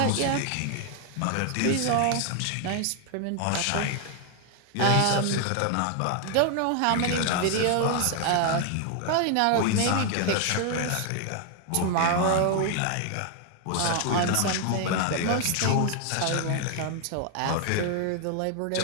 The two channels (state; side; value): different; both; correlation 0.00